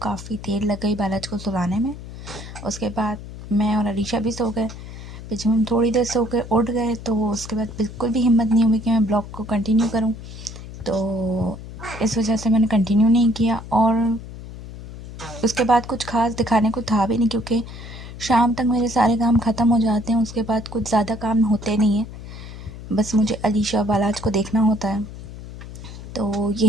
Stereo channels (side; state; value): left; noise; hum, 13 dB below the sound